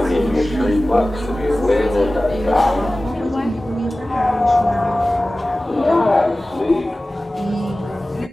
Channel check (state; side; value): normal; both; correlation 0.97